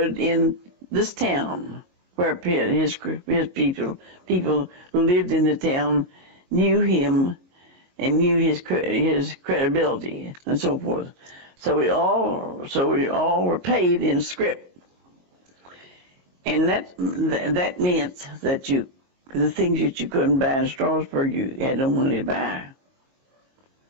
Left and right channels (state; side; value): late; left; 22 ms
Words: in this town, where his people who lived in the town knew him and knew his credibility and so forth. So we all were paid in script, and that meant that the things that you couldn't buy in Strasburg, you had no money to buy.